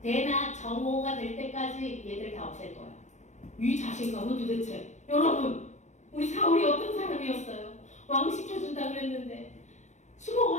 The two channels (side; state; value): right; late; 0.34 ms